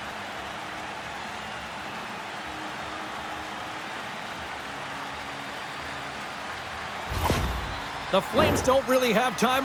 The Flames don't really have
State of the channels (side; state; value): both; identical; correlation 1.00